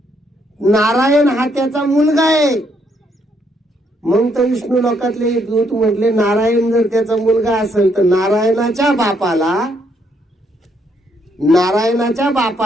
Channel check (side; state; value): both; normal; correlation 0.73